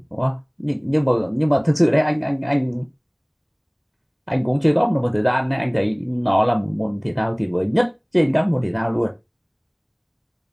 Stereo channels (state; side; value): identical; both; correlation 1.00